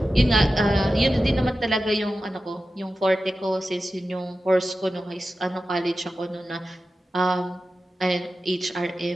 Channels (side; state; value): both; normal; correlation 0.93